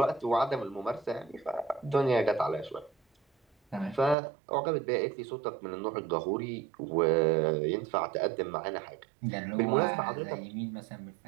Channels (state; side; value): drops out; left; at 4.2 s